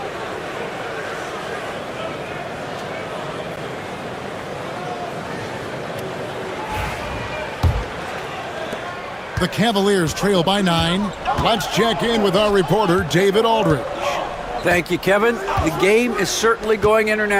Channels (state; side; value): identical; both; correlation 1.00